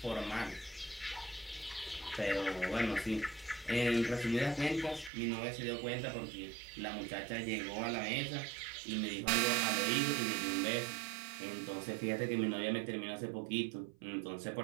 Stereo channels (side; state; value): left; drops out; at 5.1 s